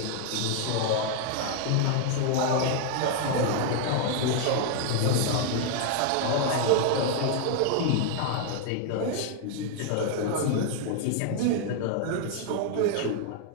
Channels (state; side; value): different; both; correlation 0.00